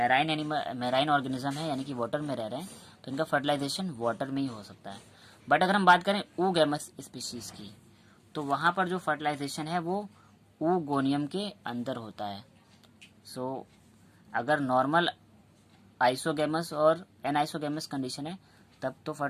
ऑर्गेनिज्म है यानी कि वाटर में रह रहे हैं, तो इनका फर्टिलाइजेशन वाटर में ही हो सकता है। बट अगर हम बात करें oogamous स्पीशीज़ की, तो वहाँ पर जो फर्टिलाइजेशन है वो oogoनियम के अंदर होता है। सो अगर नॉर्मल आइसोगेमस और एनाइसोगेमस कंडीशन है तब तो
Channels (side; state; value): both; identical; correlation 1.00